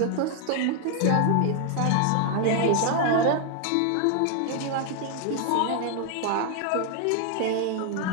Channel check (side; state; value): both; different; correlation 0.00